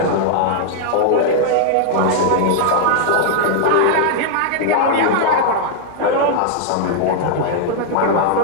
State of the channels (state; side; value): different; both; correlation -0.01